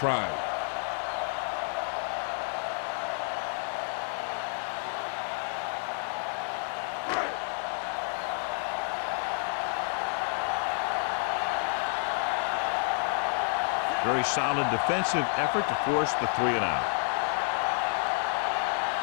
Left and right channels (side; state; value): right; silent; 58 dB below the other